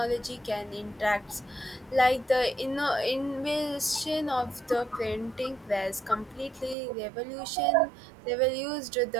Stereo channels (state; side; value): drops out; left; at 6.8 s